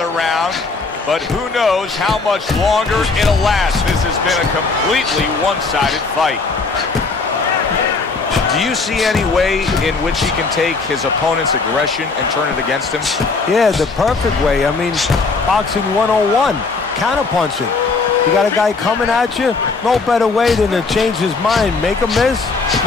round. But who knows how much longer it'll last. This has been a completely one-sided fight. Do you see any way in which he can take his opponent's aggression and turn it against him? Yeah, the perfect way. I mean, boxing 101, counterpunching. You got a guy coming at you, no better way than to change his mind. Make him miss,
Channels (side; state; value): right; quieter; 4.2 dB